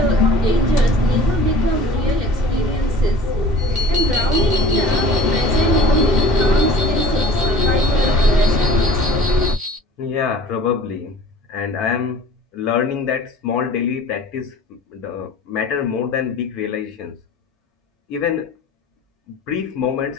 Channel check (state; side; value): normal; both; correlation 0.46